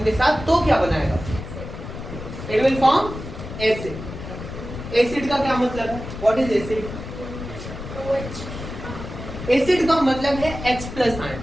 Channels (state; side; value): noise; left; rumble, 10 dB below the sound